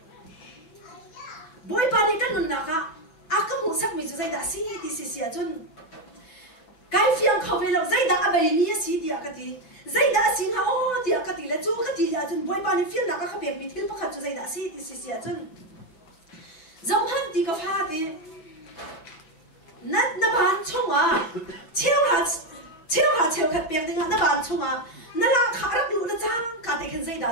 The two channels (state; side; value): late; right; 6.1 ms